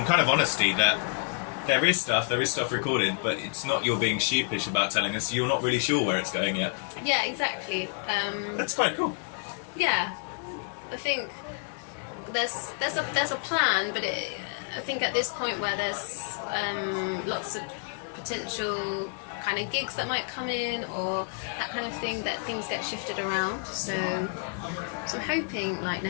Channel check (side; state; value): right; quieter; 39.4 dB